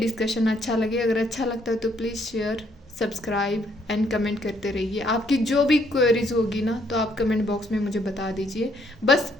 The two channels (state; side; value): normal; both; correlation 0.69